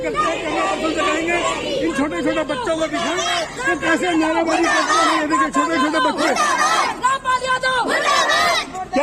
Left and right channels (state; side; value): identical; both; correlation 1.00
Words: हैं, करना पसंद करेंगे। इन छोटे छोटे बच्चों को दिखाएं कि कैसे नारेबाजी करते हैं। ये देखिए छोटे छोटे बच्चे